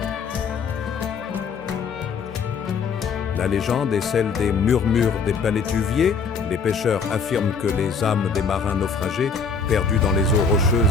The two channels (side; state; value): right; quieter; 5.4 dB